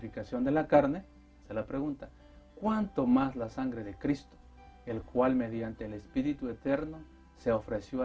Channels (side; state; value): both; identical; correlation 1.00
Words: de la carne, se la pregunta, ¿cuánto más la sangre de Cristo, el cual mediante el Espíritu Eterno se ofreció